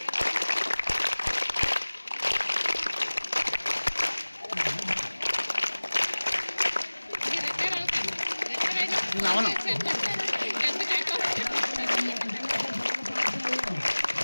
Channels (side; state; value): both; inverted; correlation -1.00